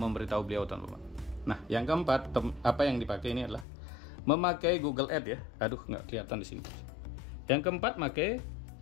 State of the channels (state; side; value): drops out; right; at 3.7 s